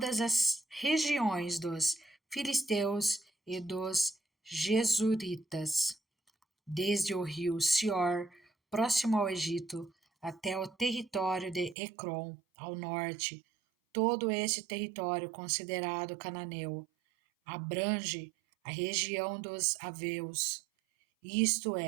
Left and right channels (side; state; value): left; drops out; at 11.8 s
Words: as regiões dos filisteus e dos jesuritas, desde o rio Sior, próximo ao Egito, até o território de Ecrom, ao norte. Todo esse território considerado cananeu abrange a região dos Aveus, isto